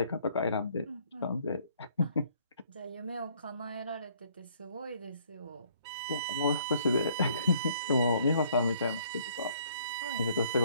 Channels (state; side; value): inverted; both; correlation -0.63